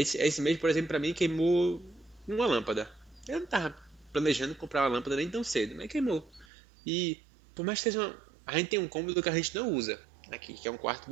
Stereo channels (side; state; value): left; drops out; at 6.5 s